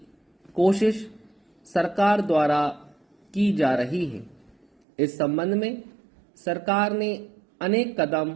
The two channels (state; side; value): drops out; left; at 4.7 s